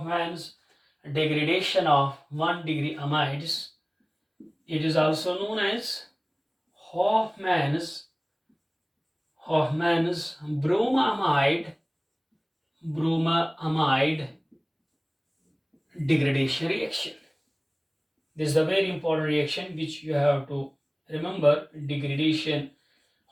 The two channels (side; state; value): both; identical; correlation 1.00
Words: degradation of 1 degree amides. It is also known as Hoffman's Bruma amide degradation reaction. This is a very important reaction which you have to remember. Degradation,